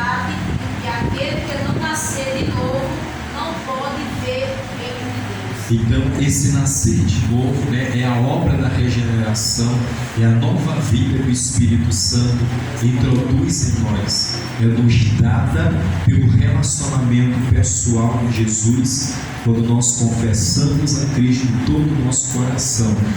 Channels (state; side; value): identical; both; correlation 1.00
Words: que aquele que não nascer de novo não pode ver o reino de Deus. Então, esse nascer de novo é a obra da regeneração, é a nova vida que o Espírito Santo introduz em nós. É nos dada pelo relacionamento pessoal com Jesus. Quando nós confessamos a Cristo em todo o nosso coração,